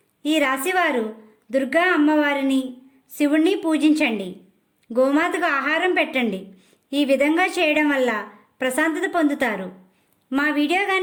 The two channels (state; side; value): identical; both; correlation 1.00